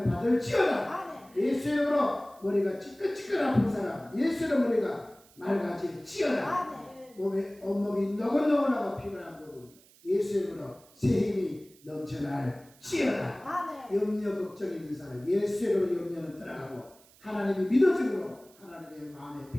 받을지어다. 예수 이름으로 머리가 찌끈찌끈 아픈 사람 예수 이름으로 머리가 맑아질지어다. 몸에 온몸이 너글너글하고 피곤한 부분 예수 이름으로 새 힘이 넘쳐날지어다. 염려 걱정 있는 사람 예수 이름으로 염려는 떠나가고 하나님이 믿어짐으로 하나님의 마음의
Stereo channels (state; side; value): noise; right; hiss, 27 dB below the sound